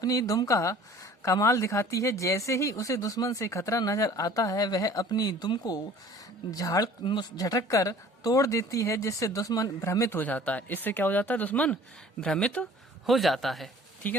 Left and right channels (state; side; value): normal; both; correlation 0.49